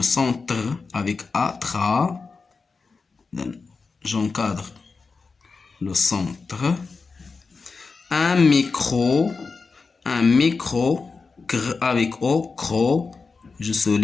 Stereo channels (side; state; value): right; quieter; 4.5 dB